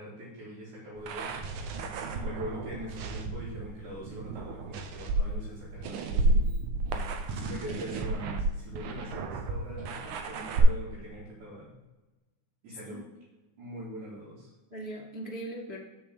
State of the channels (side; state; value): left; late; 9.7 ms